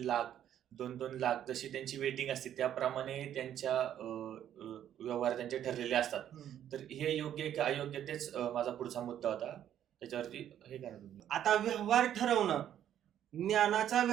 लाख, 2 लाख जशी त्यांची वेटिंग असते त्याप्रमाणे त्यांच्या व्यवहार त्यांचे ठरलेले असतात. तर हे योग्य की अयोग्य तेच माझा पुढचा मुद्दा होता, त्याच्यावरती हे करा तुम्ही. आता व्यवहार ठरवणं, ज्ञानाचा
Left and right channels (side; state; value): left; quieter; 10.6 dB